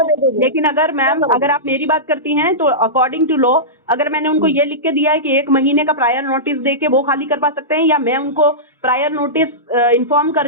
लेकिन अगर मैम अगर आप मेरी बात करती हैं तो अकॉर्डिंग टू लॉ अगर मैंने उनको ये लिख के दिया है कि 1 महीने का प्रायर नोटिस दे के वो खाली कर पा सकते हैं, या मैं उनको प्रायर नोटिस इन्फॉर्म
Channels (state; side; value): normal; both; correlation -0.16